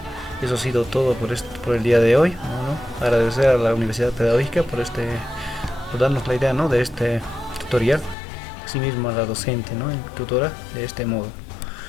Eso ha sido todo por el día de hoy. Bueno, agradecer a la Universidad Pedagógica por darnos la idea, ¿no?, de este tutorial. Asimismo a la docente, ¿no?, tutora de este modo.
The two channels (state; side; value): drops out; right; at 8.2 s